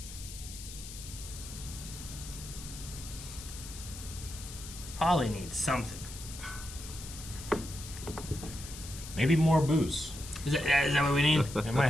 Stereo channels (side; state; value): left; noise; hiss, 12 dB below the sound